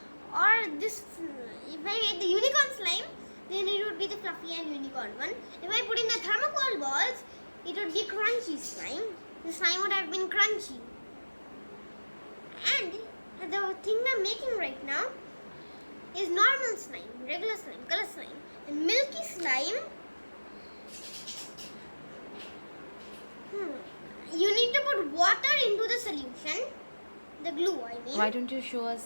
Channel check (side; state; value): both; inverted; correlation -1.00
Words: if I made the unicorn slime, then it would be the fluffy and unicorn one. If I put in the thermocol balls, it would be crunchy slime. The slime would have been crunchy. And the thing I'm making right now is normal slime, regular slime, color slime. And milky slime You need to put water into the solution. The glue, I mean. Why don't you show